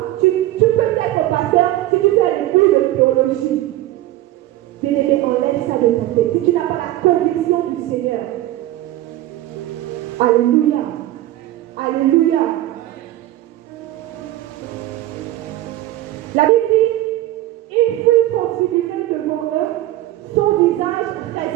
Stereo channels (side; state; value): left; quieter; 15.3 dB